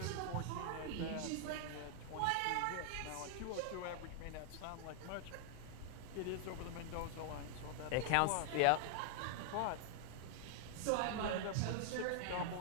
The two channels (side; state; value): both; different; correlation 0.00